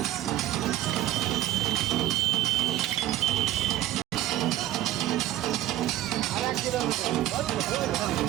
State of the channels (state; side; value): quieter; left; 13.9 dB